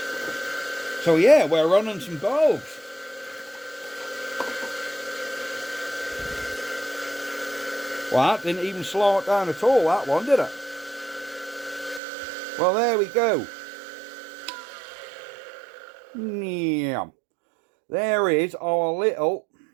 So yeah, we're running some bulbs. Well, that didn't even slow it down at all, that one, did it? Well, there we go. Yeah. There is our little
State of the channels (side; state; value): left; drops out; at 12.0 s